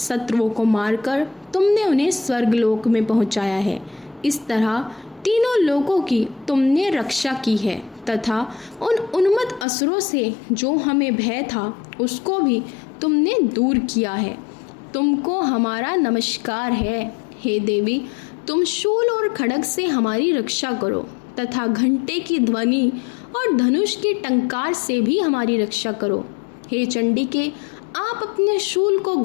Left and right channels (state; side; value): drops out; right; at 9.7 s